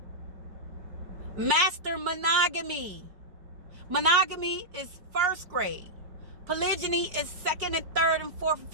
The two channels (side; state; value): left; late; 5.1 ms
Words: Master monogamy. Monogamy is first grade. Polygyny is second and third and fourth and